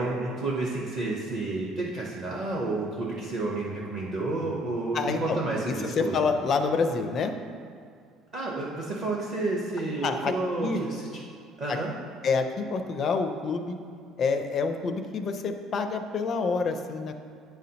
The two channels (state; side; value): normal; both; correlation 0.64